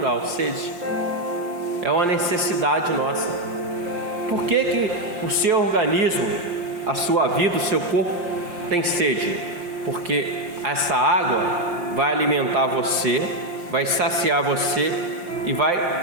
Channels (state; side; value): late; left; 5.7 ms